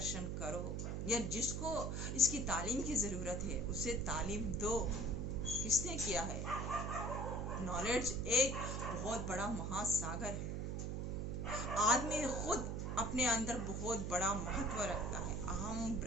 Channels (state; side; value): noise; right; hum, 2 dB below the sound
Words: करो, या जिसको इसकी तालीम की ज़रूरत है उसे तालीम दो। किसने किया है? नॉलेज एक बहुत बड़ा महासागर है। आदमी खुद अपने अंदर बहुत बड़ा महत्व रखता है। अहम